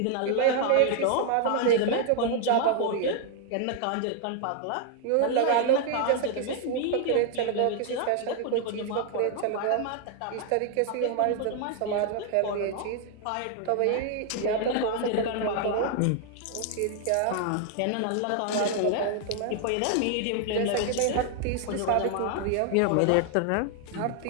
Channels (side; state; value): both; different; correlation 0.00